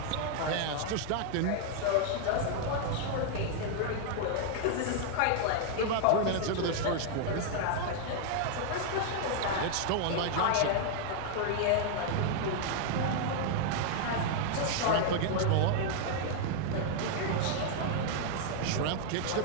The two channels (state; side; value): different; both; correlation 0.00